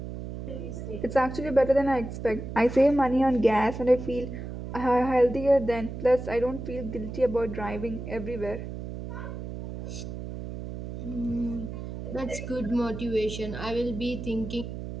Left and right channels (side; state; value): right; noise; hum, 8 dB below the sound